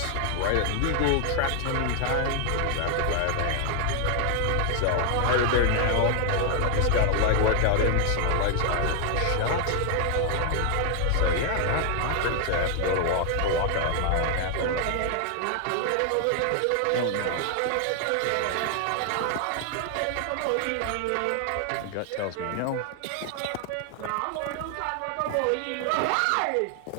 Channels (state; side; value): different; both; correlation 0.00